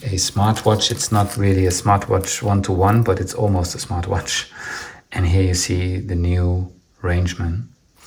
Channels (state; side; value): identical; both; correlation 1.00